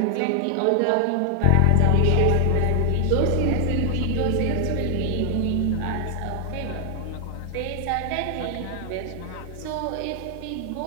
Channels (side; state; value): both; different; correlation 0.00